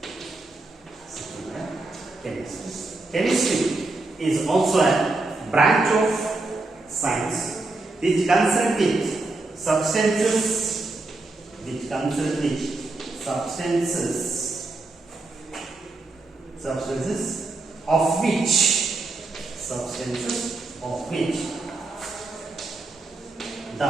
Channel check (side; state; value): left; quieter; 3.2 dB